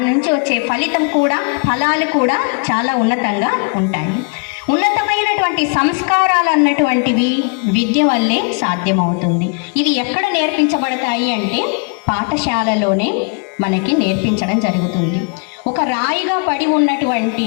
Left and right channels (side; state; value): right; quieter; 37.0 dB